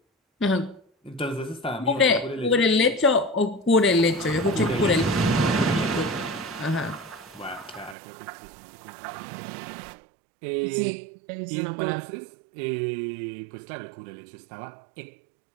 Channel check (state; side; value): drops out; left; at 8.0 s